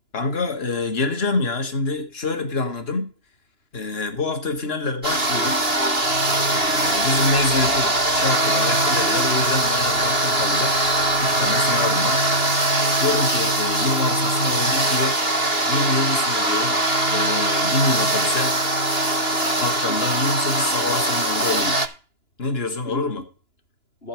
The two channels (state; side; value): late; right; 2.9 ms